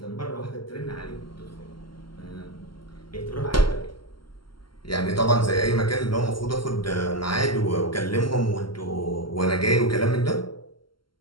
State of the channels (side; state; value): right; late; 0.73 ms